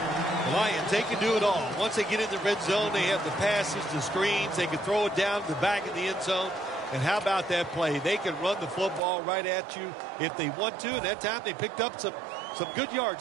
Lions, they can do it all. Once they get in the red zone, they have the passes, the screens. They can throw it down to the back of the end zone. And how about that play? They can run the football right at you if they want to. And that time they picked up some good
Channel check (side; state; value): left; drops out; at 9.0 s